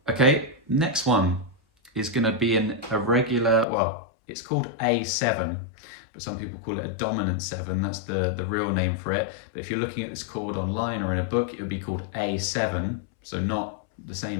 Okay, next one is going to be a regular, well, it's called A7, but some people call it a dominant 7. That's the real name for it. But if you're looking at this chord online or in a book, it would be called A7. So not the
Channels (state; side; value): drops out; right; at 3.7 s